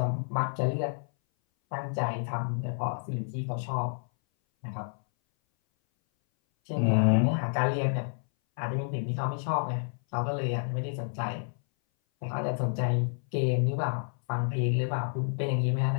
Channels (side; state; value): right; silent; 58 dB below the other